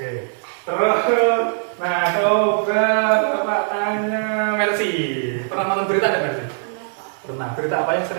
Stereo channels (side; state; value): left; silent; digital silence